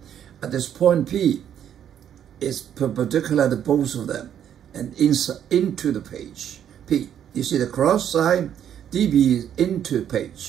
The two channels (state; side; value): quieter; left; 9.6 dB